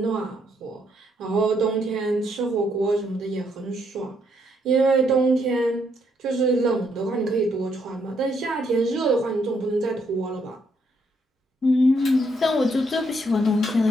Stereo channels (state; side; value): normal; both; correlation 0.74